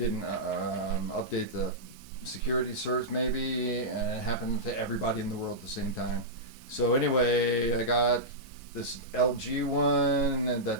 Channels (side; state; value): both; normal; correlation -0.12